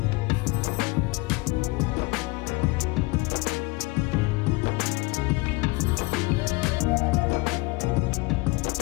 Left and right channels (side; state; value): right; quieter; 23.6 dB